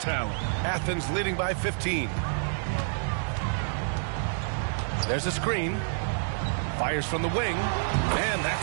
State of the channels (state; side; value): silent; left; digital silence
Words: Athens leading by 15. There's a screen. Fires from the wing. And